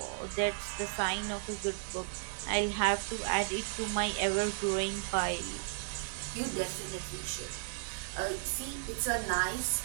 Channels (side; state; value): left; silent; digital silence